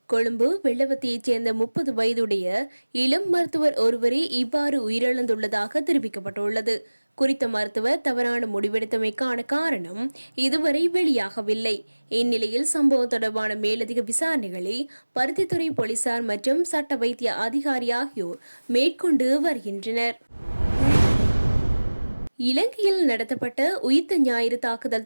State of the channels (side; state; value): both; inverted; correlation -1.00